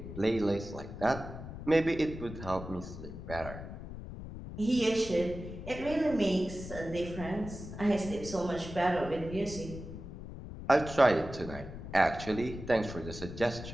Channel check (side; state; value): left; noise; rumble, 10 dB below the sound